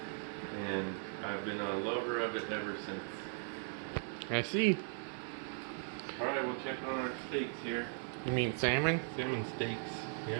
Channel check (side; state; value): left; silent; 52 dB below the other